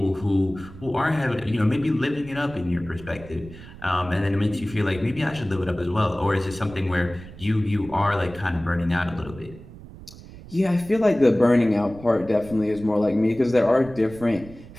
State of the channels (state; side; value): noise; right; rumble, 17 dB below the sound